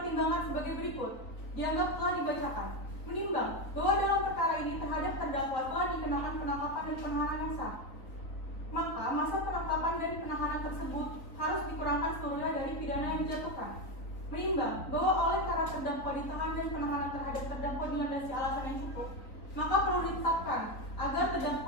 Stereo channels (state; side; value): late; right; 3.6 ms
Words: sebagai berikut, dianggap telah dibacakan. Menimbang bahwa dalam perkara ini terhadap terdakwa telah dikenakan penangkapan dan penahanan yang sah, maka masa penangkapan dan penahanan tersebut harus dikurangkan seluruhnya dari pidana yang dijatuhkan. Menimbang bahwa oleh karena terdakwa ditahan dan penahanan terhadap terdakwa dilandasi alasan yang cukup, maka perlu ditetapkan